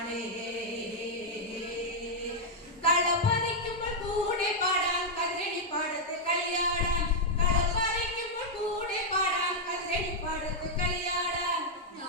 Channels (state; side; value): normal; both; correlation -0.05